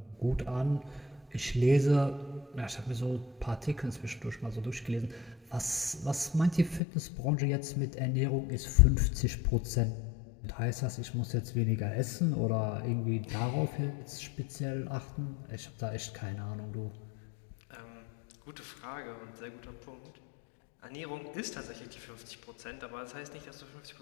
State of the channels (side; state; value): right; drops out; at 6.8 s